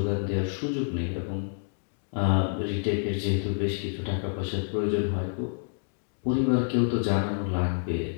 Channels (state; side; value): silent; right; digital silence